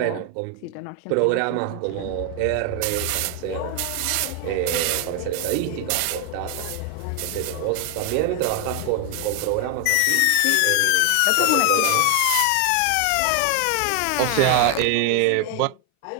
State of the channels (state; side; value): different; both; correlation 0.01